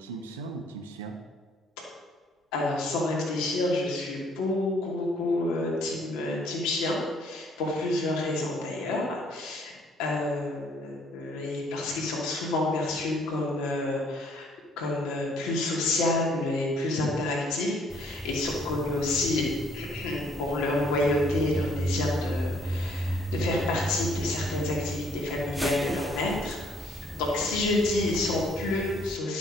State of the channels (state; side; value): normal; both; correlation 0.63